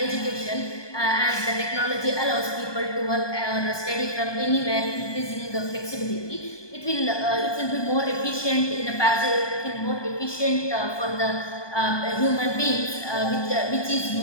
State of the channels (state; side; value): late; right; 1.2 ms